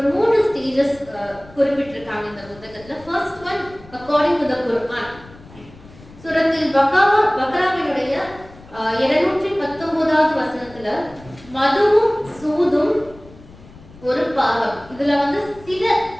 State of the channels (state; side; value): noise; left; rumble, 21 dB below the sound